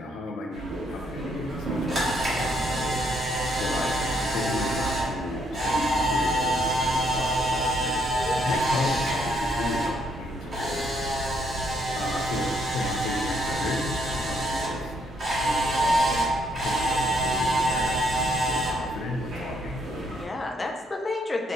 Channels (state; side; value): normal; both; correlation 0.71